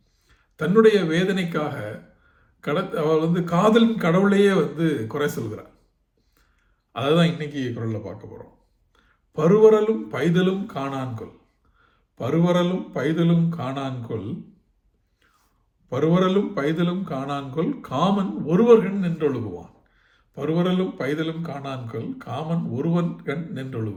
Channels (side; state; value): both; identical; correlation 1.00